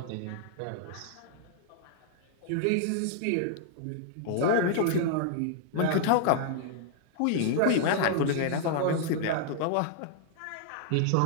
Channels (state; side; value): different; both; correlation -0.01